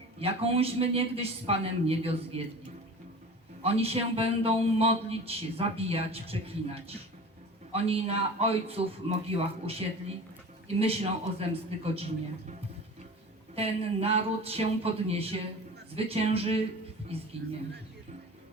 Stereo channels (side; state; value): both; normal; correlation 0.37